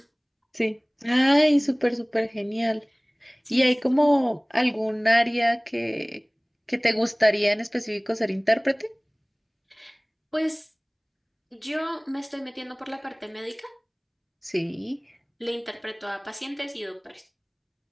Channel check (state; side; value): identical; both; correlation 1.00